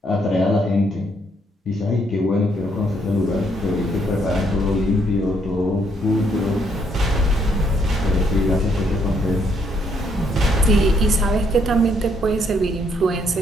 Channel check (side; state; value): both; normal; correlation 0.71